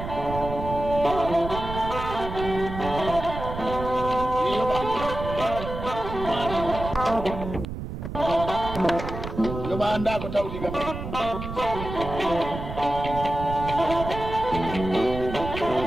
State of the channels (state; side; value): noise; right; rumble, 8 dB below the sound